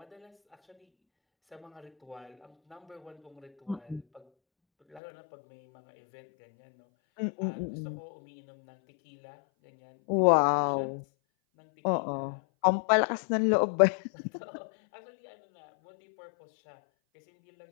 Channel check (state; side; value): drops out; right; at 5.0 s